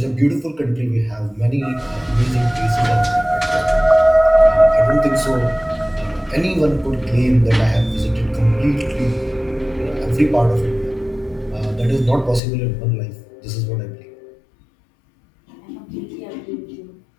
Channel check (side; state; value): right; drops out; at 12.4 s